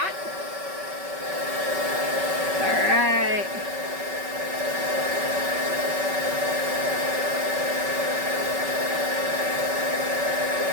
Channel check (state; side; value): late; left; 5.3 ms